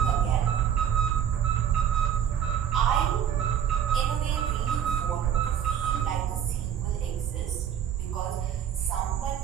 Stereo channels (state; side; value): quieter; left; 9.1 dB